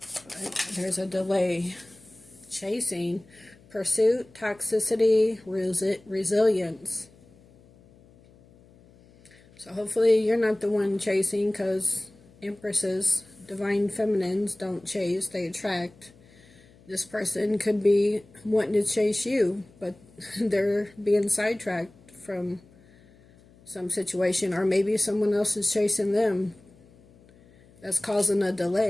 but there's a delay. Chasing, pursuit, toxicity, resilience. So hopefully you're not the one chasing, because empresses, divine feminines, don't chase, they attract. This person could be wanting to chase you, but they're being sidetracked from some situation, or maybe someone else is chasing them. That's causing a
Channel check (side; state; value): left; noise; hum, 27 dB below the sound